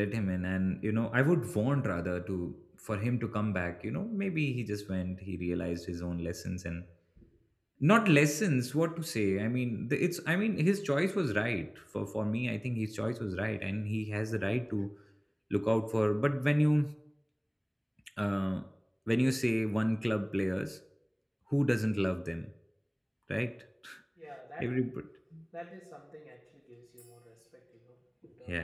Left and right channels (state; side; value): identical; both; correlation 1.00